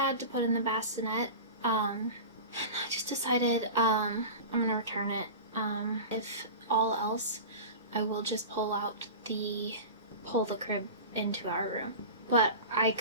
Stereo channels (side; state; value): both; inverted; correlation -0.31